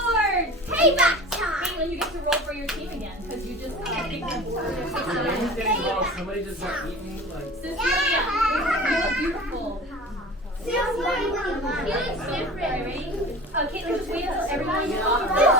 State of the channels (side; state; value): both; normal; correlation 0.38